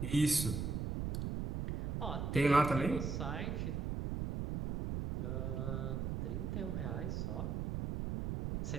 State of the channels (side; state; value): right; noise; rumble, 2 dB below the sound